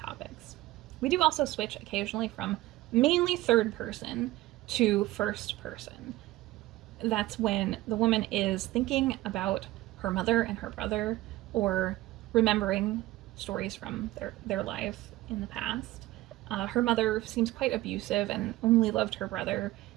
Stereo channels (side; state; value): left; quieter; 17.3 dB